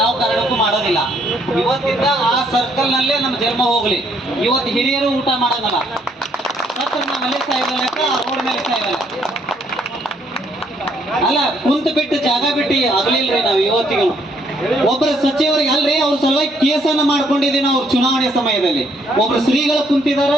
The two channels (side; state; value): both; normal; correlation 0.69